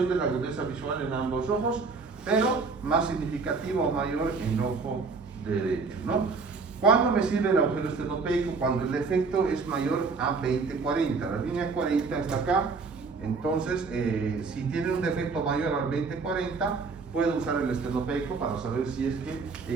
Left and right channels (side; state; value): left; quieter; 4.5 dB